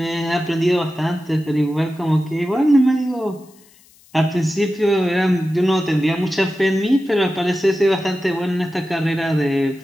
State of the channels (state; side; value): noise; left; hiss, 28 dB below the sound